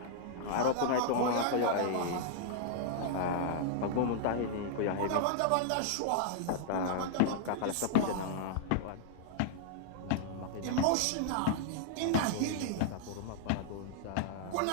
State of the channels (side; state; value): both; different; correlation -0.01